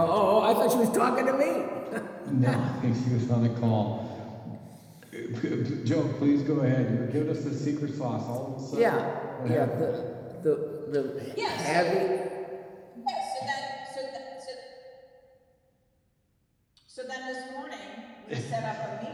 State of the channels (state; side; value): identical; both; correlation 1.00